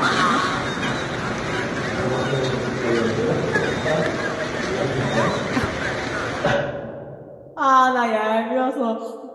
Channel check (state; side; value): identical; both; correlation 1.00